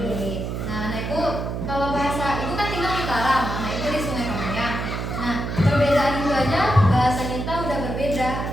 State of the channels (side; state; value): right; noise; hum, 4 dB below the sound